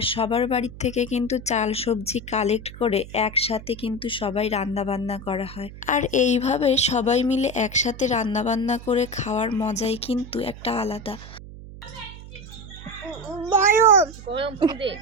সবার বাড়ির থেকে কিন্তু চাল সবজি কালেক্ট করে একসাথে কিন্তু সবাই রান্নাবান্না করা হয়। আর এইভাবে সবাই মিলে একসাথে রান্নাবান্না করে খাওয়ার মজাই কিন্তু একটা আলাদা।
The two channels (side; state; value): right; noise; hum, 15 dB below the sound